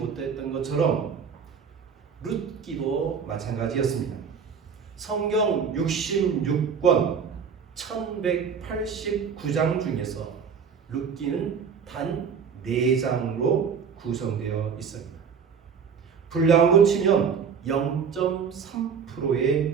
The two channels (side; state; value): left; quieter; 6.5 dB